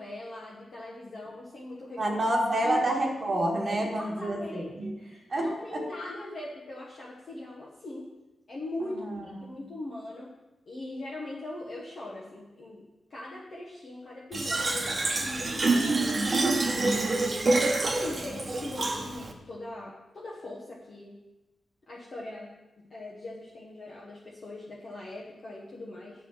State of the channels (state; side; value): normal; both; correlation 0.90